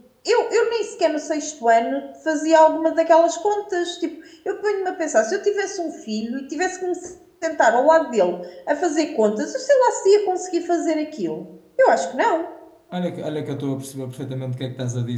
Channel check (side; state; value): both; identical; correlation 1.00